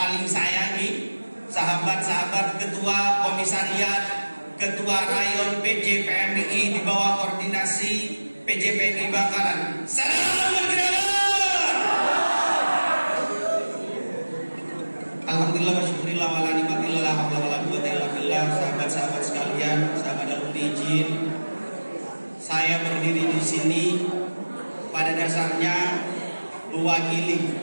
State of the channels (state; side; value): inverted; both; correlation -1.00